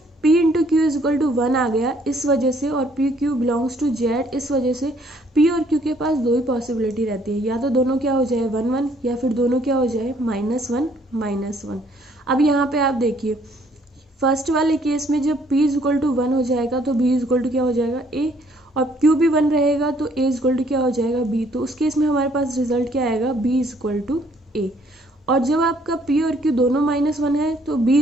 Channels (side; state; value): both; normal; correlation 0.64